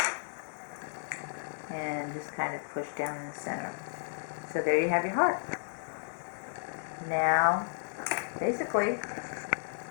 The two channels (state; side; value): silent; right; 56 dB below the other